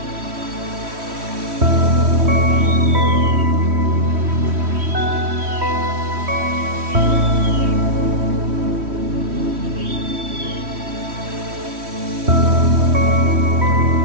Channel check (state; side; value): late; left; 3.1 ms